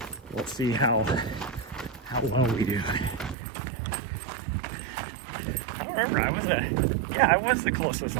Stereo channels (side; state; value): left; drops out; at 3.4 s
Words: We'll see how well we do. I don't remember. I was the closest